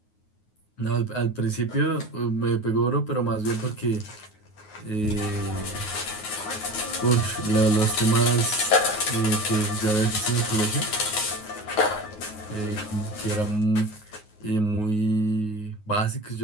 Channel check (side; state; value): right; late; 9.5 ms